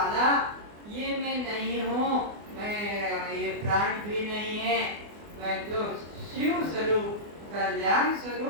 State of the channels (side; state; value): left; late; 24 ms